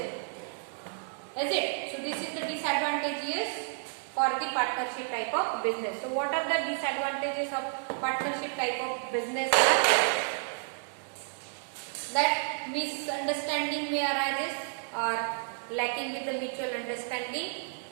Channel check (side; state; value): left; silent; 57 dB below the other